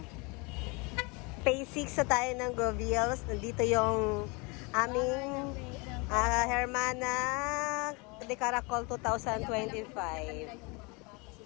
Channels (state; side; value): quieter; right; 28.9 dB